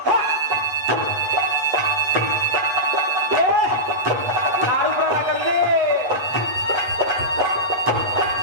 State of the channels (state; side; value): late; left; 8.2 ms